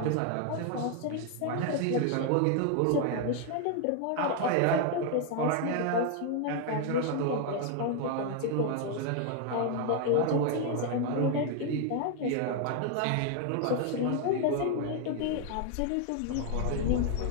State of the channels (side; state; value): both; different; correlation 0.00